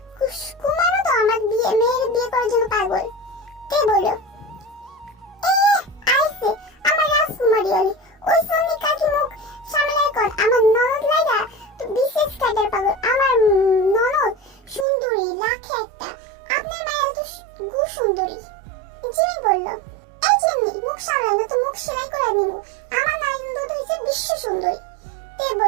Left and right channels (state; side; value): drops out; left; at 14.9 s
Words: তো আমার মেয়ের বিয়ে করার জন্য পাগল। কে বলল, আইছে আমার রাজকুমারী হলি, ওই সন্নি কাকি মুখ সামলায় কর। আমার ননদ লাইগা তো বিশেষ কাটার পাগল, আমার ননদ সুন্দরী লাখে একটা, আপনার মায়ের তো গু সুন্দরী। জিমিন বলল, এই জিমি, মুখ সামলাই না তো মুখ সেলাই করে দিব, আমার ননদ তো হইছে বিশ্ব সুন্দরী। তে